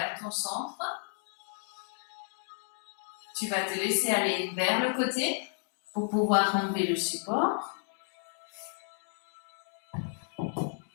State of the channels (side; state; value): right; silent; digital silence